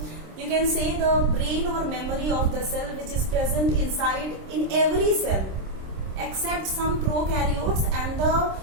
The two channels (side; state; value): left; late; 26 ms